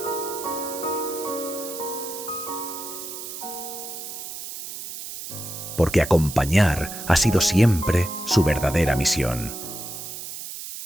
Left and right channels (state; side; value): noise; right; hiss, 9 dB below the sound